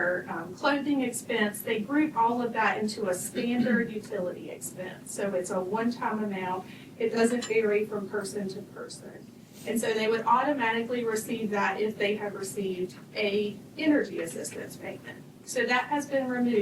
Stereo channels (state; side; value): identical; both; correlation 1.00